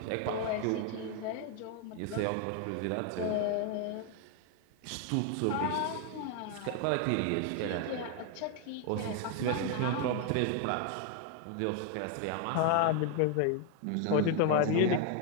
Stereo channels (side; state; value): both; different; correlation 0.01